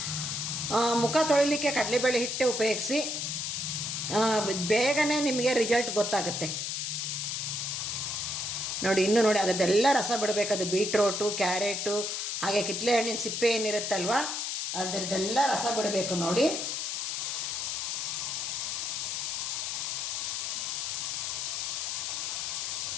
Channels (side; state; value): left; noise; hiss, 2 dB below the sound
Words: ಮುಖ ತೊಳಿಲಿಕ್ಕೆ ಕಡಲೆಬೇಳೆ ಹಿಟ್ಟೆ ಉಪಯೋಗಿಸಿ. ಬೇಗನೆ ನಿಮಗೆ ರಿಸಲ್ಟ್ ಗೊತ್ತಾಗುತ್ತೆ. ನೋಡಿ, ಇನ್ನೂ ನೋಡಿ, ಅದರದ್ದೆಲ್ಲ ರಸ ಬಿಡಬೇಕದು. ಬೀಟ್ರೋಟು, ಕ್ಯಾರೆಟು, ಹಾಗೆ ಕಿತ್ತಳೆ ಹಣ್ಣಿನ ಸಿಪ್ಪೆ ಏನಿರುತ್ತಲ್ವ, ಅದರದ್ದೆಲ್ಲ ರಸ ಬಿಡಬೇಕು ನೋಡಿ.